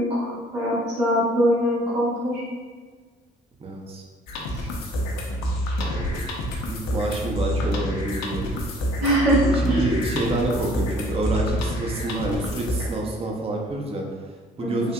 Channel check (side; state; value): both; normal; correlation 0.57